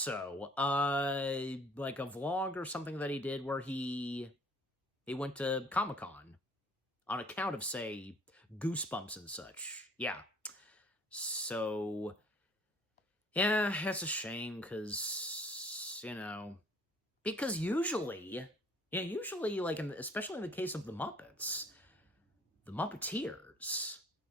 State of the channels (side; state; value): both; normal; correlation 0.55